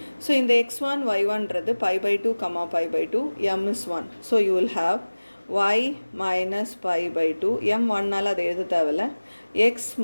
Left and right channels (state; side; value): inverted; both; correlation -1.00